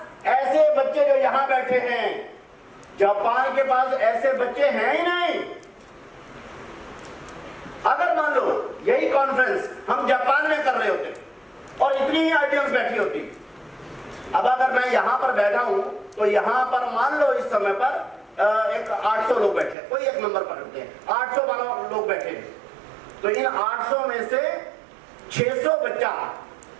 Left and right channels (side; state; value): left; drops out; at 19.8 s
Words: ऐसे बच्चे जो यहां बैठे हैं, जापान के पास ऐसे बच्चे हैं ही नहीं। अगर मान लो यही कॉन्फ्रेंस हम जापान में कर रहे होते और इतनी ही ऑडियंस बैठी होती, अब अगर मैं यहां पर बैठा हूं तो यहां पर मान लो इस समय पर एक 800 लोग बैठे, कोई एक नंबर पकड़ते हैं, 800 लोग बैठे हैं, तो इन 800 में से 600 बच्चा